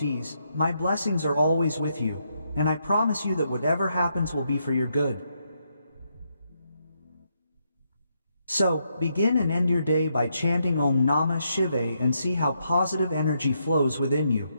my blessings are always with you, and I promise you that whatever happens will be for your good. So, begin and end your day by chanting Om Namah Shivaya and see how positive energy flows within you.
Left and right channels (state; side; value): inverted; both; correlation -0.78